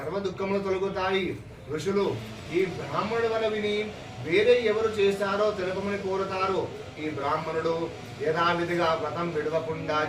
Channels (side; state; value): both; identical; correlation 1.00